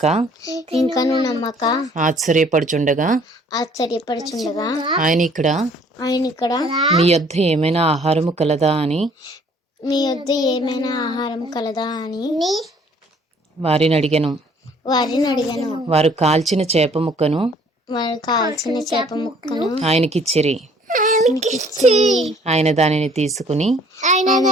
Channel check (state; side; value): normal; both; correlation 0.58